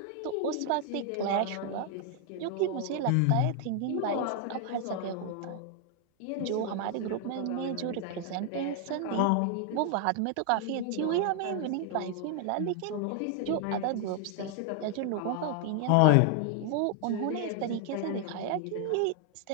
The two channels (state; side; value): different; both; correlation 0.00